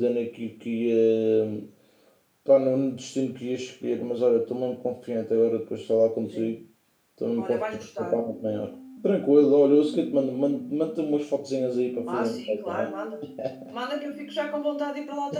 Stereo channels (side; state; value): both; identical; correlation 1.00